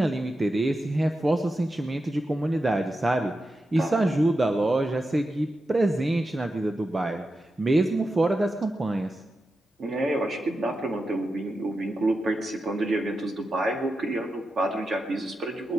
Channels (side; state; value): both; normal; correlation 0.90